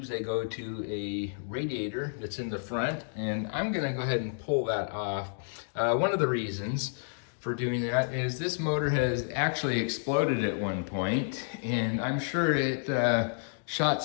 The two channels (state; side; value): silent; right; digital silence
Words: they go to a radiator that's in the front, and I'm gonna go ahead and pull that off. One of the reasons for doing that is this motor has actually exploded at one point, and I'm sure it shot